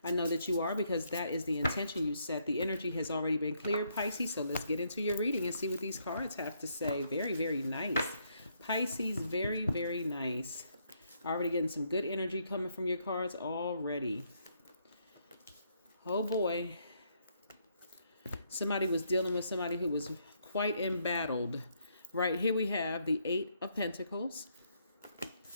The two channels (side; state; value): both; inverted; correlation -0.73